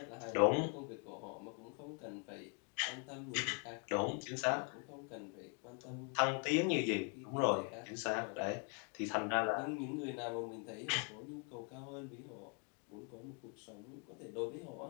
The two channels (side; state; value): right; quieter; 38.2 dB